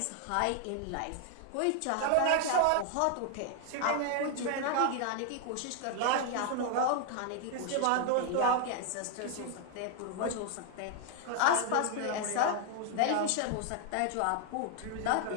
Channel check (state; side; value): different; both; correlation 0.00